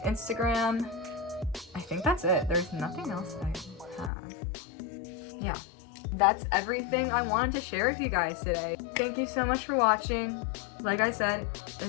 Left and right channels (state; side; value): drops out; right; at 4.1 s